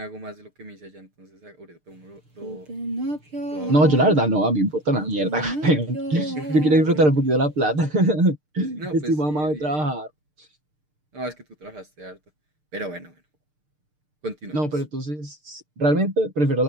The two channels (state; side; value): late; left; 6.7 ms